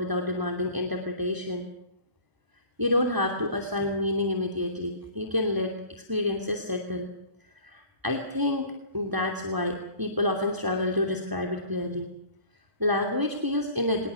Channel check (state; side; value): late; left; 1.0 ms